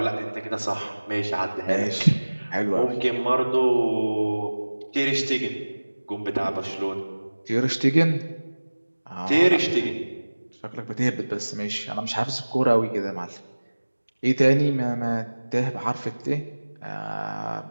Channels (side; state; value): both; inverted; correlation -1.00